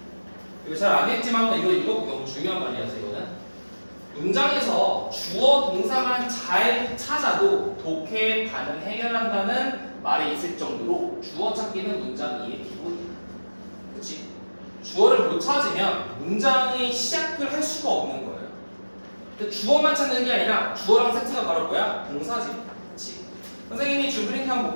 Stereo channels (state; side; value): inverted; both; correlation -1.00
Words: 이거 잘 안 했지만 이거 너무 중요한 말이라서 이거는 문장에서 주어 동사만 잘 찾아도 독해 반응 해결한다는 말이 있을 정도로 주어 찾기는 문장 이해 기본이야. 그치? 주어를 못 찾으면 문장의 시작을 할 수가 없는 거예요. 근데 주어만 찾는 게 아니라 주어랑 세트가 바로 뭐야? 동사지. 그치? 선생님이 줄 프린트 한번